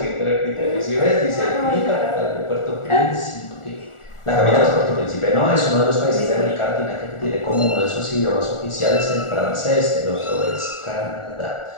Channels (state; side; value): late; right; 1.4 ms